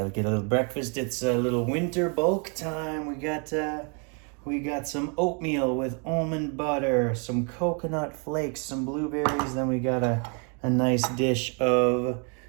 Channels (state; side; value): quieter; left; 37.5 dB